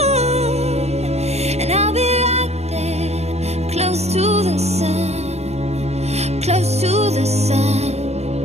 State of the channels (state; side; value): late; left; 0.31 ms